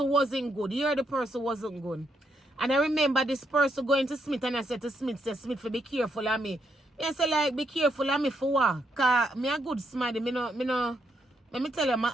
wasn't good. Here the person wasn't good. And I remember this person going to Smith, and I said to Smith, for be careful of me. I said, like, be careful of me for what? Because me a good somebody. Let me tell you, my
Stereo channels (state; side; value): normal; both; correlation 0.77